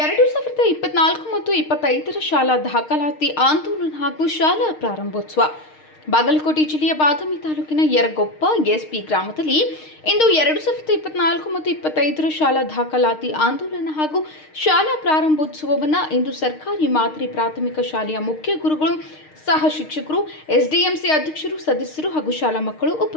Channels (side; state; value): right; late; 6.5 ms